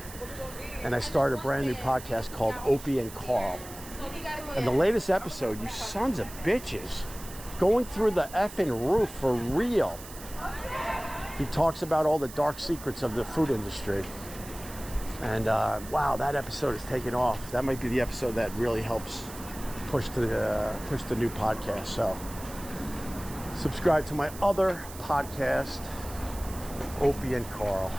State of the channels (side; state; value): right; noise; hiss, 15 dB below the sound